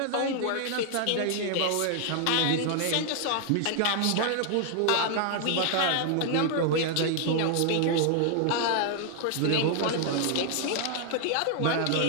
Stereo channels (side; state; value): both; different; correlation 0.00